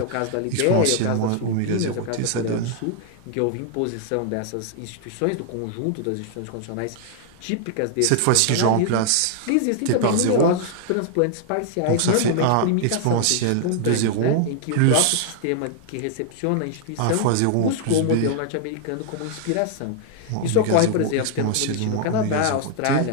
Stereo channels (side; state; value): both; different; correlation 0.00